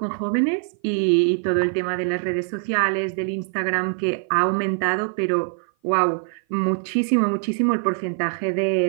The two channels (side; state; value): left; silent; 56 dB below the other